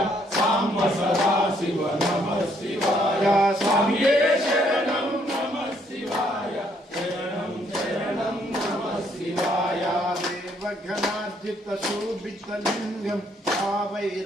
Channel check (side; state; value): both; normal; correlation 0.69